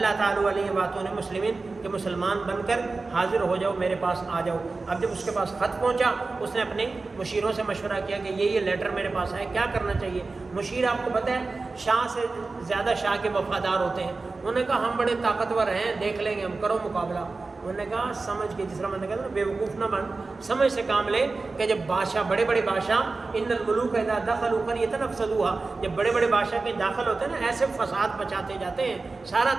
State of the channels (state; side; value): quieter; left; 3.8 dB